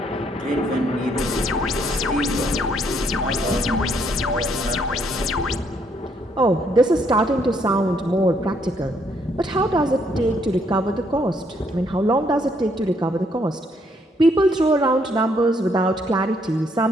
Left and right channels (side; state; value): both; normal; correlation 0.70